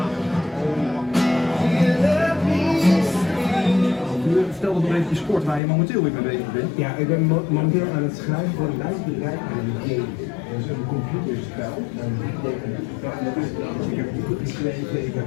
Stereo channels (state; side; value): drops out; right; at 5.6 s